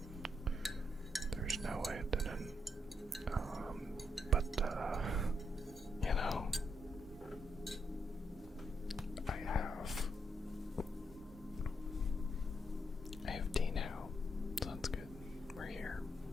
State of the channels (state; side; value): normal; both; correlation 0.78